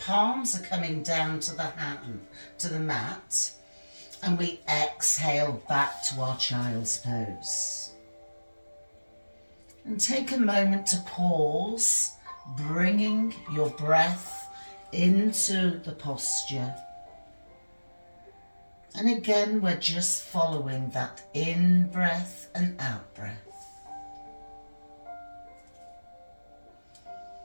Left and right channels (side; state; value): both; inverted; correlation -1.00